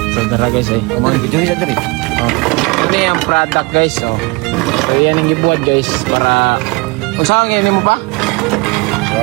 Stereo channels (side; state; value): left; quieter; 27.0 dB